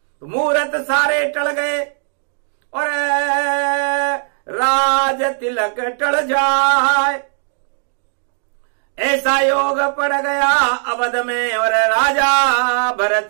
तो मुहूर्त सारे टल गए और राज तिलक टल जाए। ऐसा योग पड़ गया अवध में और राजा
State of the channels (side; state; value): left; silent; digital silence